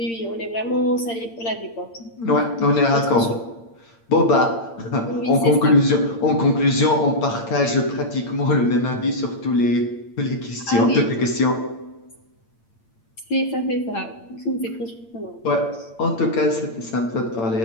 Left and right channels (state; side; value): late; right; 8.7 ms